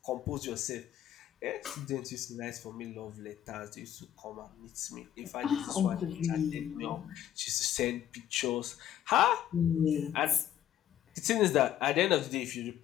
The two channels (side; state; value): right; quieter; 11.2 dB